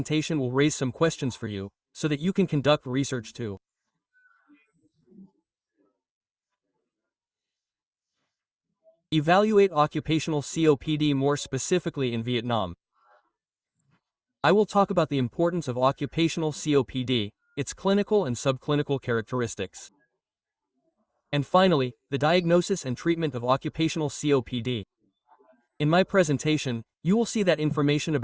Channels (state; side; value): identical; both; correlation 1.00